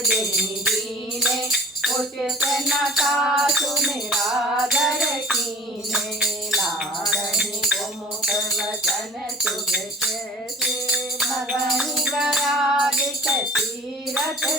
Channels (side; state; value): both; normal; correlation 0.45